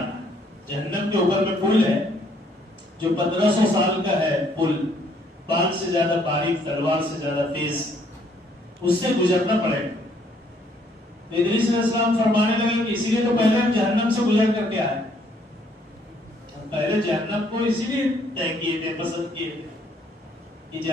ہے۔ جہنم کے اوپر میں پل ہے جو 1500 سال کا ہے، پل بال سے زیادہ باریک، تلوار سے زیادہ تیز، اس سے گزرنا پڑے گا۔ ادریس علیہ السلام فرمانے لگے کہ اسی لیے تو پہلے ہم جہنم سے گزر کر کے آئے، ہم پہلے جہنم کو اسی لیے طے کیے تھے، پسند کیے تھے کہ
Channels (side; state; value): both; normal; correlation 0.66